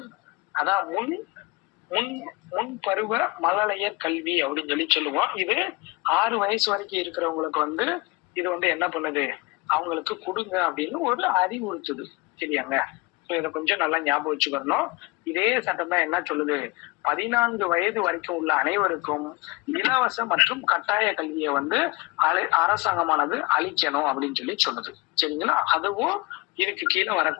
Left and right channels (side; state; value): right; quieter; 25.1 dB